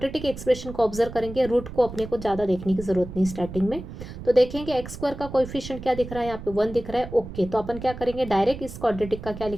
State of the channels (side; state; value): right; noise; rumble, 11 dB below the sound